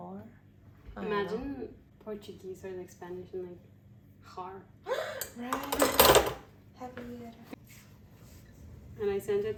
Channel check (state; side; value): identical; both; correlation 1.00